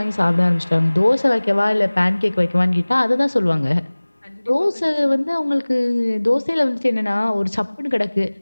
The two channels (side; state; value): both; inverted; correlation -1.00